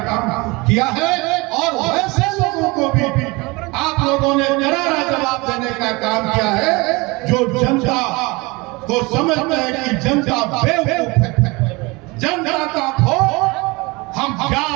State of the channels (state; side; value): quieter; left; 25.0 dB